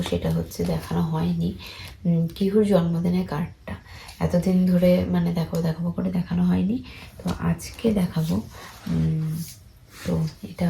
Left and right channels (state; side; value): identical; both; correlation 1.00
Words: সেটা হচ্ছে দেখানো হয়নি, কিহুর জন্মদিনের কার্ডটা। এতদিন ধরে মানে দেখাবো করে দেখানো হয়নি, তো আজকে দেখাবো। তো এটা